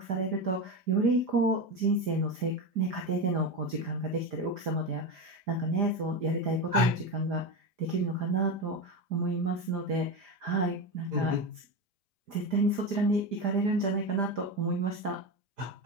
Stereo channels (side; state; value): left; late; 4.9 ms